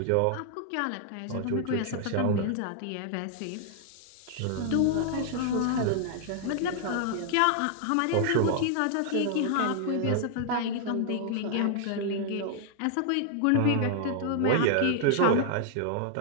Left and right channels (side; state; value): both; different; correlation -0.01